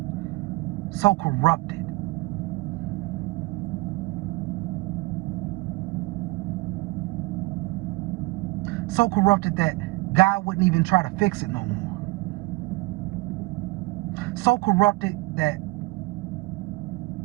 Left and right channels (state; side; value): quieter; left; 23.5 dB